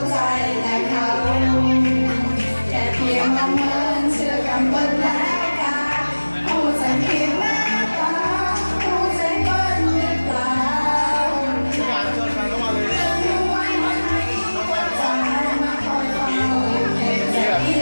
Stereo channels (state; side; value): inverted; both; correlation -1.00